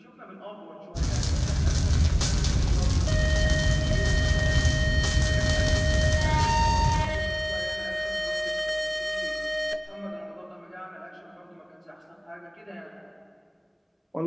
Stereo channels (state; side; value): identical; both; correlation 1.00